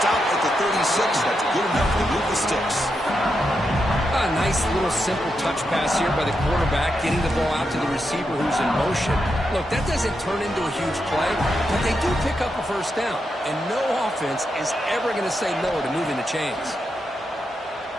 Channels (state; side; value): normal; both; correlation 0.85